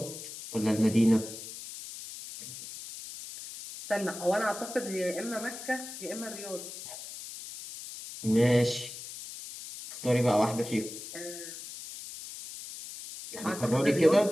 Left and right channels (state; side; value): noise; left; hiss, 11 dB below the sound